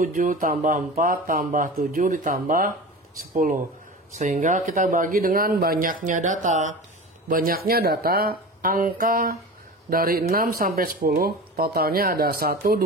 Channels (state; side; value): normal; both; correlation 0.32